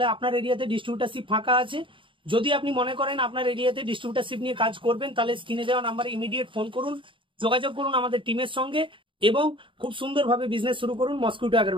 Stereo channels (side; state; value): left; late; 0.25 ms